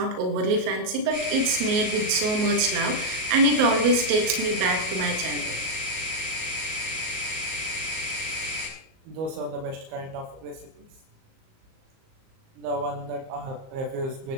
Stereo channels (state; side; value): late; left; 37 ms